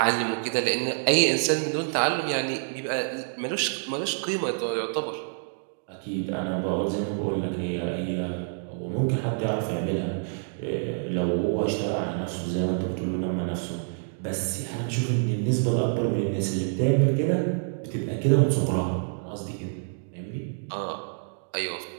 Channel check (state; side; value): silent; left; digital silence